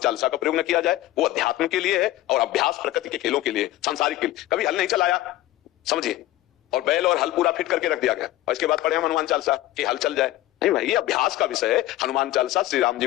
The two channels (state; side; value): quieter; right; 15.5 dB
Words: का प्रयोग न किया जाए, वो अध्यात्म के लिए है और अभ्यास प्रकृति के खेलों के लिए, सांसारिक के लिए। कभी हल नहीं चलाया, समझिए, और बैल और हल पूरा फिट करके रख दिया गया और इसके बाद पढ़े हम हनुमान चालीसा कि हल चल जाए। नहीं भाई, ये अभ्यास का विषय है। हनुमान चालीसा श्री राम जी